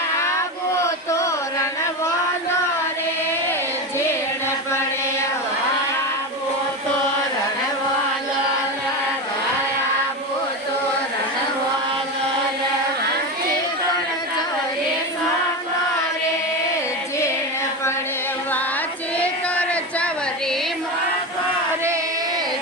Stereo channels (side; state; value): both; normal; correlation 0.19